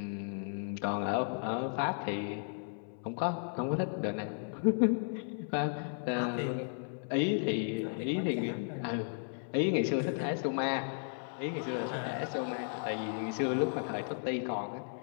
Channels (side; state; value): right; silent; 55 dB below the other